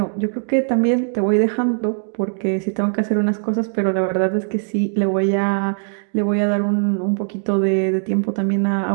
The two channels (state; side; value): silent; left; digital silence